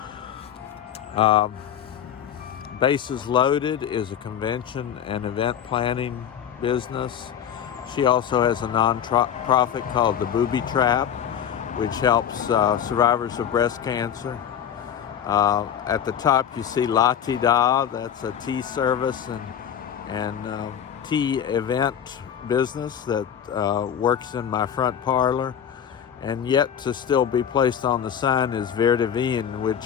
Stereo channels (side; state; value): right; quieter; 9.0 dB